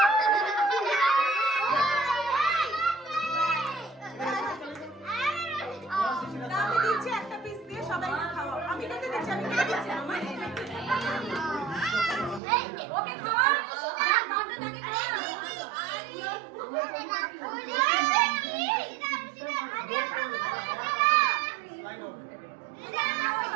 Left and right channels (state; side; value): drops out; left; at 12.4 s